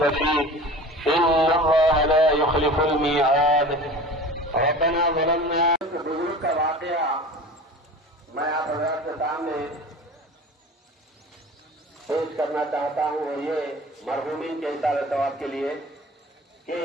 फीह इन्नल्लाह ला युख़्लिफ़ुल मिईआद। रब्बना ज़लमना। बुजुर्ग का वाक़या मैं आप हज़रात के सामने पेश करना चाहता हूँ और ये मरहूमीन के इशारे सवाब के लिए कि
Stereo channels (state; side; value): normal; both; correlation 0.38